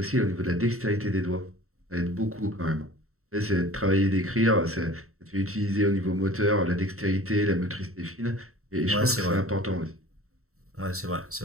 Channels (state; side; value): late; left; 0.63 ms